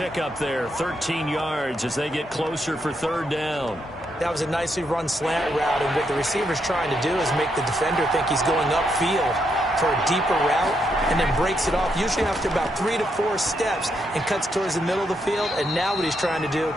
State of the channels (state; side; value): normal; both; correlation 0.79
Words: there, 13 yards as they get closer for 3rd down. That was a nicely run slant route, and what the receiver's trying to do is make the defender think he's going upfield for a deeper route, and then breaks it off, usually after about 3 to 4 steps, and cuts towards the middle of the field. And now what he's trying to do